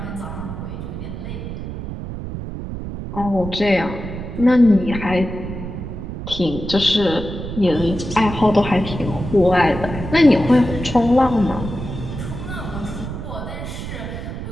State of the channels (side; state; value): right; noise; rumble, 7 dB below the sound